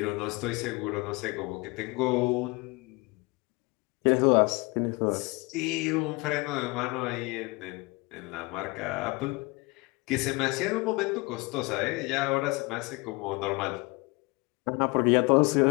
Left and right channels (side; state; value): right; quieter; 25.7 dB